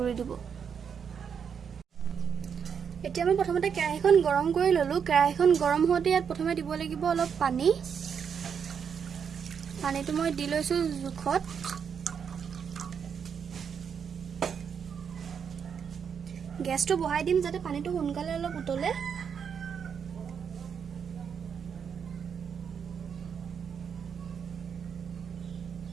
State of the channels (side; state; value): left; quieter; 7.1 dB